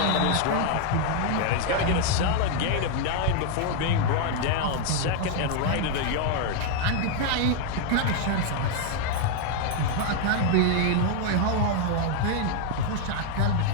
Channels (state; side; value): different; both; correlation 0.00